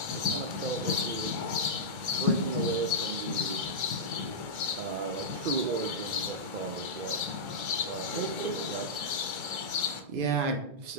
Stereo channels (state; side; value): late; left; 1.4 ms